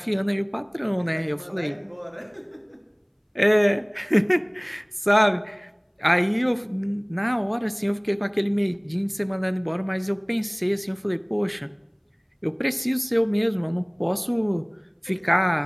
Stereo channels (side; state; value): both; identical; correlation 1.00